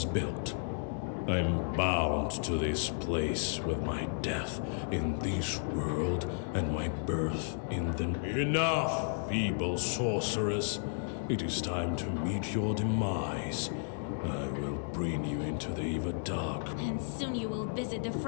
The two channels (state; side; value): silent; right; digital silence